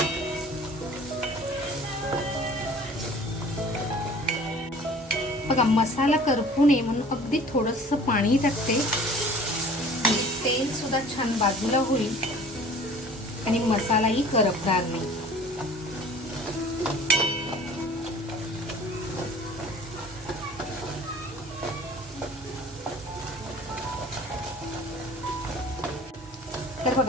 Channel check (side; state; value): both; normal; correlation 0.47